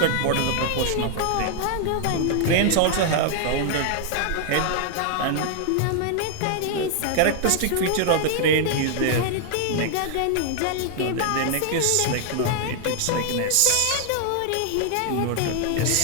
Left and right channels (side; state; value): both; different; correlation 0.00